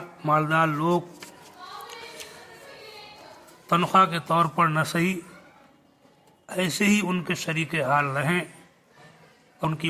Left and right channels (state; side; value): identical; both; correlation 1.00